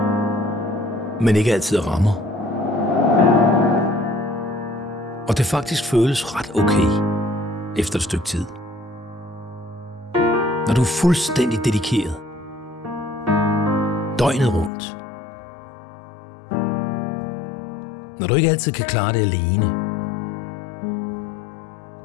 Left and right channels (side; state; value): right; drops out; at 14.7 s